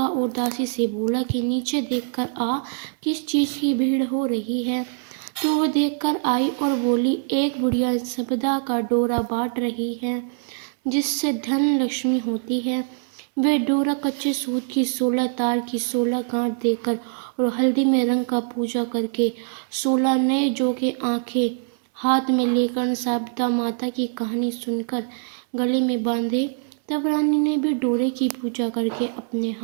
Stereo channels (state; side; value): silent; left; 62 dB below the other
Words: और दासी से बोला कि नीचे देखकर आ, किस चीज की भीड़ हो रही है। तो वो देखकर आई और बोली, एक बुढ़िया संपदा का डोरा बांट रही है जिससे धन लक्ष्मी होती है। वह डोरा कच्चे सूत की 16 तार की 16 गांठ देकर और हल्दी में रंग का पूजा करके 16 नए जोगे आंखें हाथ में लेकर संपदा माता की कहानी सुनकर गले में बांधे। तब रानी ने भी डोरे की पूजा करके अपने